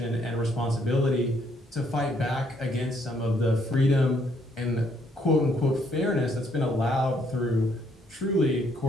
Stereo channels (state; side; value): normal; both; correlation 0.69